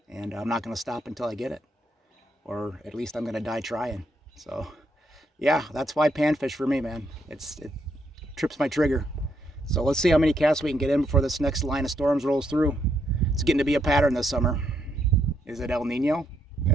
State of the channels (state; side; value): normal; both; correlation 0.76